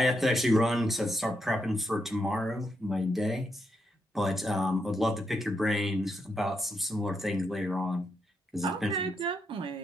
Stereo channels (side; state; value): both; normal; correlation 0.81